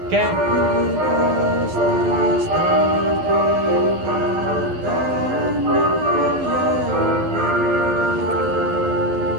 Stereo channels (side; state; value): left; late; 11 ms